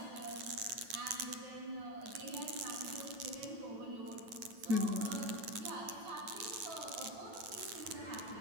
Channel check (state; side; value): late; left; 9.1 ms